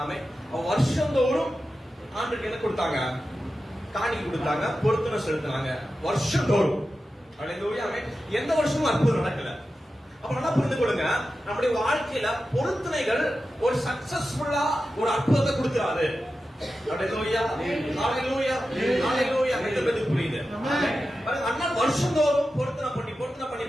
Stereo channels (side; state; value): both; normal; correlation 0.92